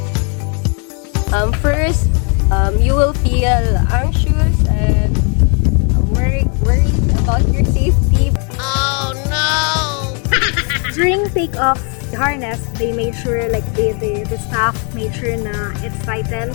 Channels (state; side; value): quieter; right; 37.9 dB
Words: First, you will feel anxious and worried about your safety. During takeoff, the harness, they made sure, like the staff made sure na it's